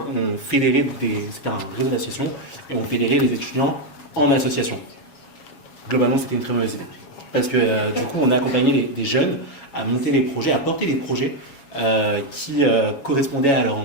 on fédérait c'était un réseau d'associations et on fédérait les étudiants en association. Globalement c'était une très mauvaise idée parce que du coup on a accompagné des jeunes à monter les projets, à porter des projets qui correspondaient à leur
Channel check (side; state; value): right; late; 7.2 ms